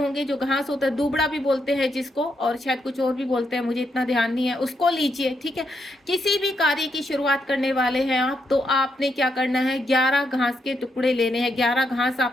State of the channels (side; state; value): both; normal; correlation 0.80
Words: जो घास होता है दूबड़ा भी बोलते हैं जिसको, और शायद कुछ और भी बोलते हैं, मुझे इतना ध्यान नहीं है, उसको लीजिए, ठीक है। किसी भी कार्य की शुरुआत करने वाले हैं आप, तो आपने क्या करना है, 11 घास के टुकड़े लेने हैं, 11 घास